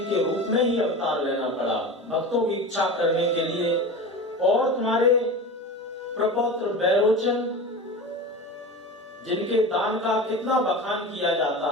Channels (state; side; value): normal; both; correlation 0.30